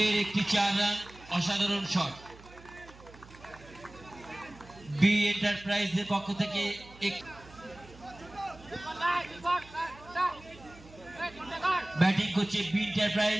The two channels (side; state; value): right; noise; hum, 21 dB below the sound